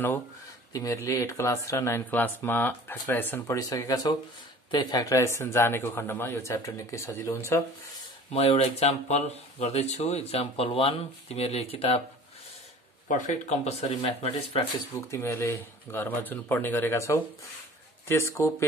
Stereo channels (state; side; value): normal; both; correlation 0.45